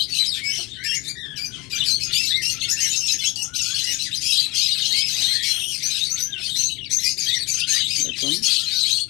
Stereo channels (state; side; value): quieter; right; 24.0 dB